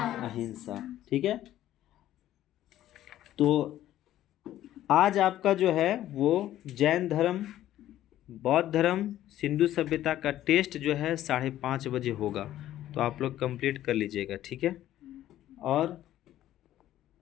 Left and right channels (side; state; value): right; quieter; 13.1 dB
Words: अहिंसा। ठीक है। तो आज आपका जो है वो जैन धर्म, बौद्ध धर्म, सिंधु सभ्यता का टेस्ट जो है 5:30 बजे होगा, तो आप लोग कंप्लीट कर लीजिएगा। ठीक है। और